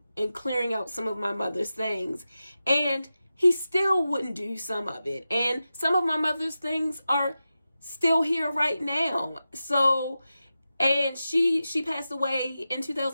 and clearing out some of my mother's things. And he still wouldn't do some of it. And some of my mother's things are still here right now. So, and she passed away in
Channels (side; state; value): both; inverted; correlation -0.92